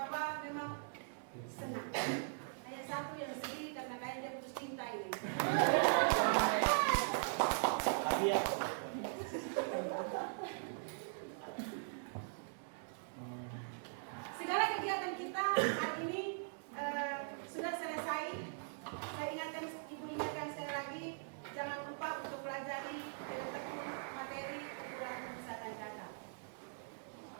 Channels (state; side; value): silent; left; digital silence